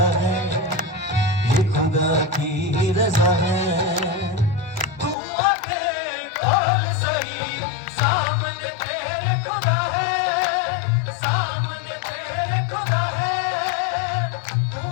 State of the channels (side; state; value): right; drops out; at 5.2 s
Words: है ये खुदा की रज़ा है तू आके खोल सही सामने तेरे खुदा है सामने तेरे खुदा है तू